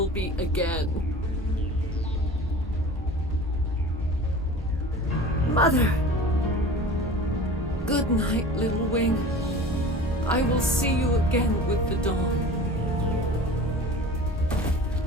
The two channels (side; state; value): both; normal; correlation 0.39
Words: be again. Mother! Good night, little wing. I will see you again with the dawn.